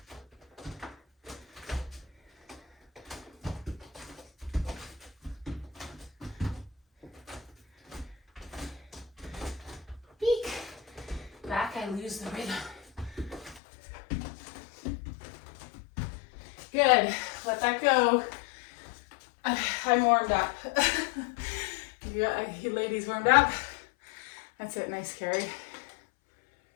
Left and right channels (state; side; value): drops out; right; at 13.6 s